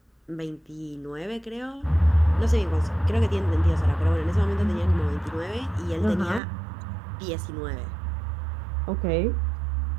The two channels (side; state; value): left; drops out; at 6.4 s